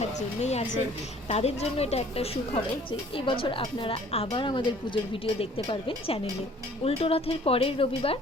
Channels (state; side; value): normal; both; correlation 0.54